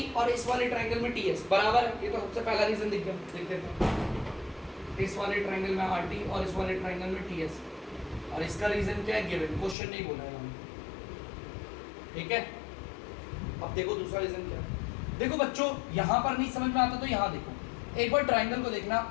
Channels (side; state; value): right; drops out; at 9.8 s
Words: और इस वाले ट्राइंगल में टीएस बराबर है, ये तो सबसे पहला रीजन दिख गया। देख लेते हैं, इस वाले ट्राइंगल में आरटी और इस वाले ट्राइंगल में टीएस, और इसका रीजन क्या है, गिवन, क्वेश्चन नहीं बोला है हमने, ठीक है। अब देखो दूसरा रीजन क्या है। देखो बच्चों यहां पर नहीं समझ में आता तो यहां देखो, एक बार ट्राइंगल को देखना,